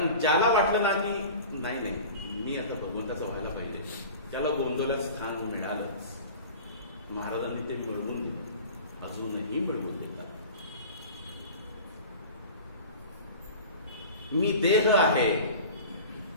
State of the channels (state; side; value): inverted; both; correlation -0.38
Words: ज्याला वाटलं ना की नाही मी आता भगवंताचं व्हायला पाहिजे, त्याला गोंधळात स्थान मिळालंच. महाराजांनी ते मिळवून दिलं, अजूनही मिळवून देतात. मी देह आहे,